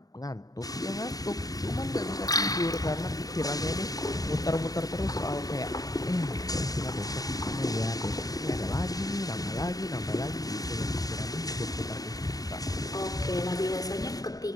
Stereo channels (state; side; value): late; right; 0.18 ms